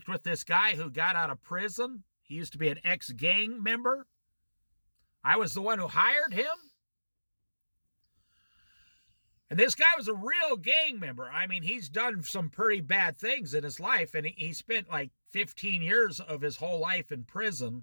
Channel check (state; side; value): inverted; both; correlation -1.00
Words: with this guy who got out of prison. He used to be an ex-gang member. I was the one who hired him. And this guy was a real gang member. I mean, he's done some pretty bad things in his life, and he spent 15 years of his whole life in